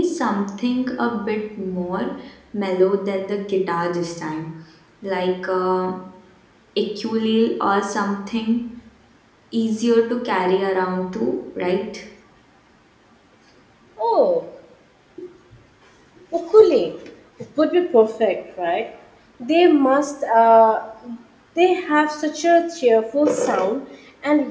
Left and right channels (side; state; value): both; identical; correlation 1.00